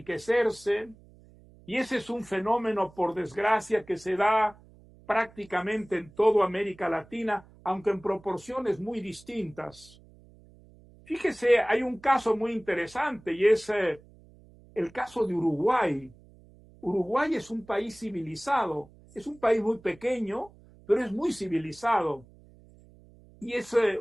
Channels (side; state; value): right; noise; hum, 25 dB below the sound